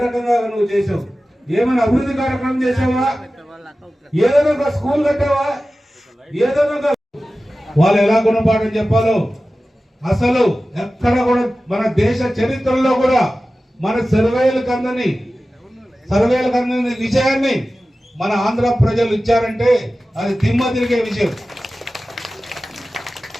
రకంగా నువ్వు చేసావు? ఏమైనా అభివృద్ధి కార్యక్రమం చేసావా? ఏదైనా ఒక స్కూల్ కట్టావా? ఏదైనా వాళ్ళు ఎలా గుణపాఠం చెప్పాలో అసలు ఎక్కడ కూడా మన దేశ చరిత్రలో కూడా మన సర్వేలకు అందని విషయాన్ని మన ఆంధ్ర ప్రజలు ఇచ్చారంటే అది దిమ్మ తిరిగే విషయం.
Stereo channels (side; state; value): both; normal; correlation 0.95